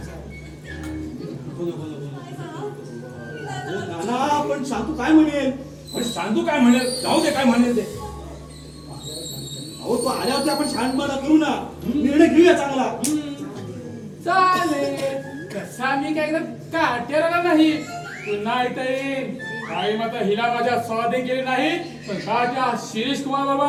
नाना पण शांतू काय म्हणेल? पण सांगू काय म्हणेल जाऊ दे काय म्हणेल ते. अहो तो आल्यावरती आपण शांतपणा करू ना, निर्णय घेऊया चांगला. चालेल तसा मी काय काटेला नाही पुन्हा इथे येईन. काही मात्र हिला माझ्या स्वाधीन केले नाही पण राजा शिरीष कुमार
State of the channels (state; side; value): identical; both; correlation 1.00